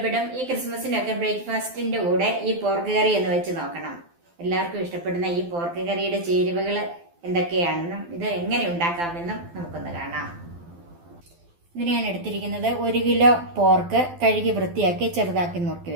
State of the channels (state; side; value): late; left; 12 ms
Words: ഈ ക്രിസ്മസിനൊക്കെ ബ്രേക്ക്ഫാസ്റ്റിന്റെ കൂടെ ഈ പോർക്ക് കറി എന്ന് വെച്ച് നോക്കണം. എല്ലാവർക്കും ഇഷ്ടപ്പെടുന്ന ഈ പോർക്ക് കറിയുടെ ചേരുവകൾ എന്തൊക്കെയാണെന്നും ഇത് എങ്ങനെ ഉണ്ടാക്കാമെന്നും നമുക്കൊന്ന് കാണാം. ഇതിന് ഞാൻ എടുത്തിരിക്കുന്നത് 1 കിലോ പോർക്ക് കഴുകി വൃത്തിയാക്കി ചെറുതാക്കി നുറുക്കി